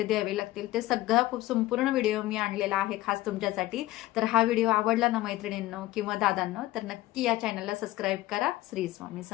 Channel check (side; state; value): right; quieter; 17.2 dB